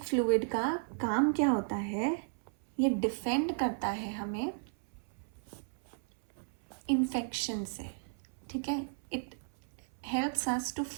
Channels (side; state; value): left; silent; 55 dB below the other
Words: फ्लूइड का काम क्या होता है, ये डिफेंड करता है हमें इन्फेक्शन से। ठीक है, it helps us to